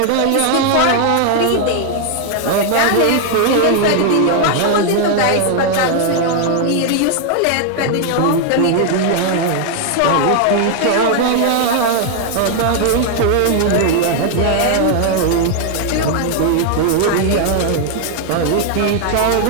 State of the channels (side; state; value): both; different; correlation 0.00